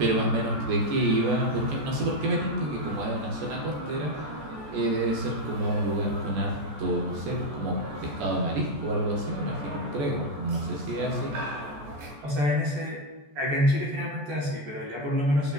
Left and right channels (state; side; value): late; left; 14 ms